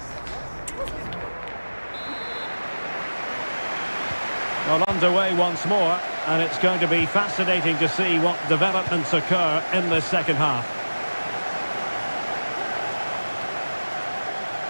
Well, underway once more, and it's going to be fascinating to see what developments occur in the second half.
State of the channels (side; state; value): both; inverted; correlation -1.00